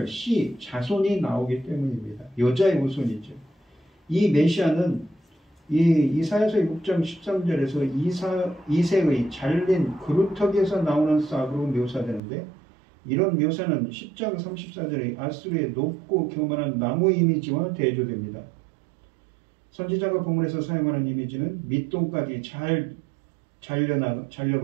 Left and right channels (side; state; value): left; drops out; at 12.2 s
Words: 자손이 나오기 때문입니다. 여자의 후손이죠. 이 메시아는 이 이사야서 6장 13절에서 이새의 잘린 그루터기에서 나오는 싹으로 묘사되는데, 이런 묘사는 10장 34절의 아수르의 높고 교만한 나무 이미지와 대조됩니다. 선지자가 본문에서 사용하는 이미지는 밑동까지 잘